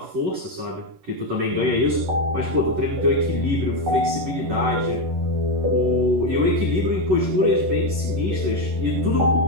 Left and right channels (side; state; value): left; late; 11 ms